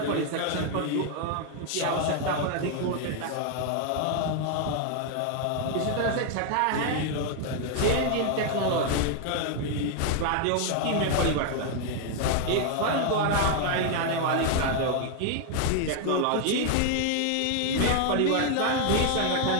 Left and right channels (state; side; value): different; both; correlation 0.00